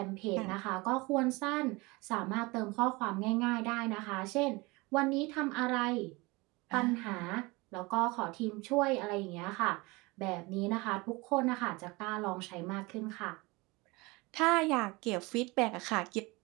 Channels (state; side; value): quieter; left; 24.2 dB